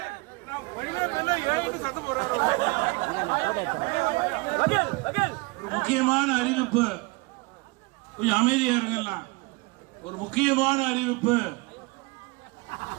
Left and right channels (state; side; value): quieter; left; 25.3 dB